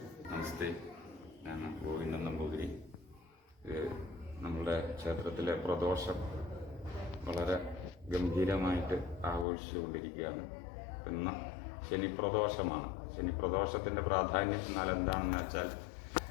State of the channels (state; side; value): drops out; right; at 9.5 s